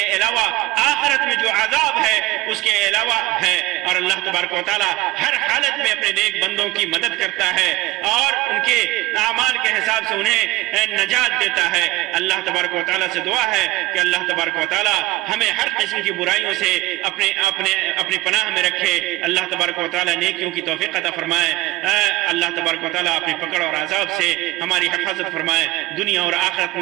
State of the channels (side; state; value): left; quieter; 18.7 dB